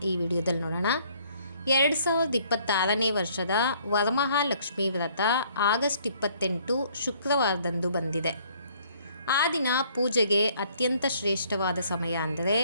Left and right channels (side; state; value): both; inverted; correlation -0.62